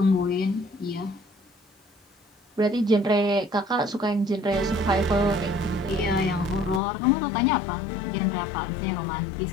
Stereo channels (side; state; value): right; drops out; at 6.8 s